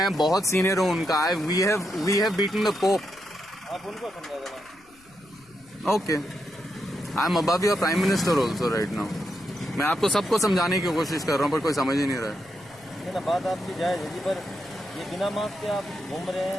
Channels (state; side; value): noise; left; rumble, 29 dB below the sound